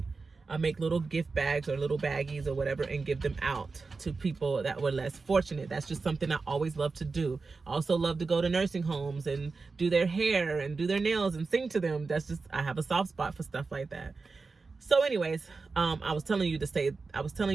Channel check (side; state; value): left; quieter; 4.2 dB